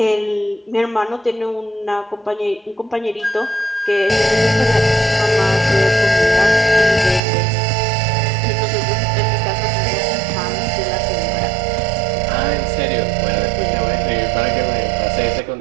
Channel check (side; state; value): left; drops out; at 7.2 s